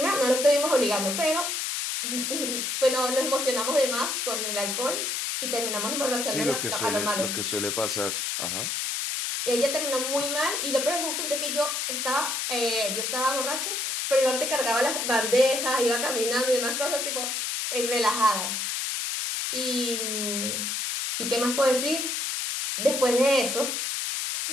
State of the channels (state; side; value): noise; left; hiss, 1 dB below the sound